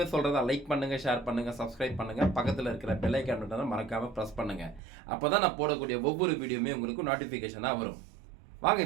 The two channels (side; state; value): left; drops out; at 4.8 s